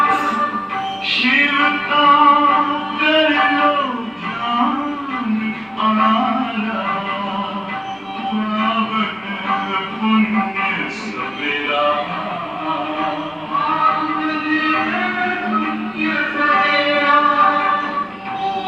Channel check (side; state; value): both; identical; correlation 1.00